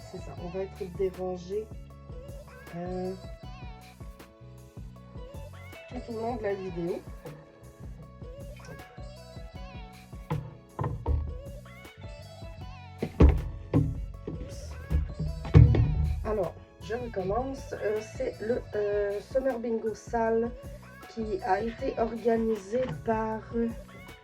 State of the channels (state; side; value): identical; both; correlation 1.00